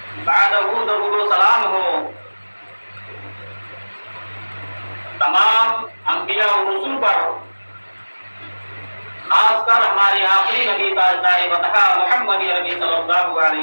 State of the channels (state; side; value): inverted; both; correlation -1.00